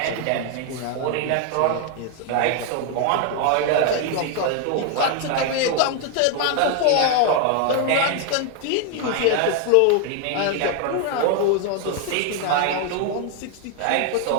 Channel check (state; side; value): different; both; correlation 0.00